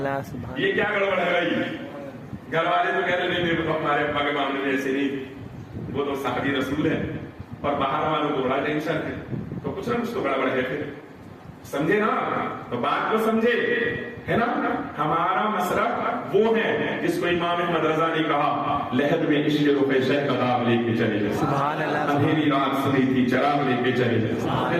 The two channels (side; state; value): both; identical; correlation 1.00